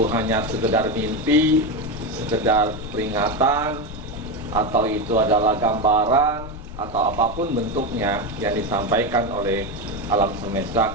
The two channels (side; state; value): left; noise; rumble, 12 dB below the sound